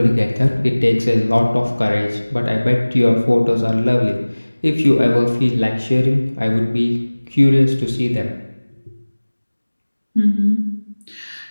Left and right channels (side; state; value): both; inverted; correlation -1.00